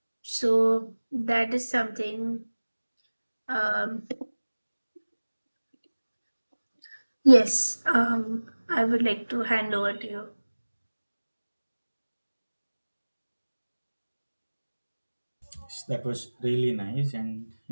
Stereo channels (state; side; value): inverted; both; correlation -1.00